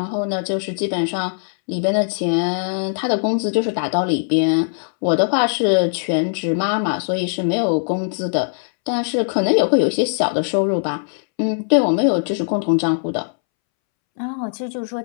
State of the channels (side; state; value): right; silent; 66 dB below the other